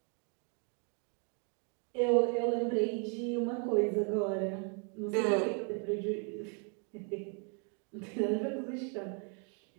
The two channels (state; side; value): quieter; left; 38.7 dB